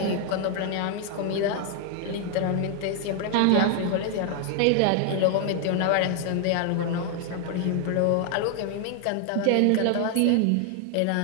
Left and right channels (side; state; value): both; different; correlation 0.00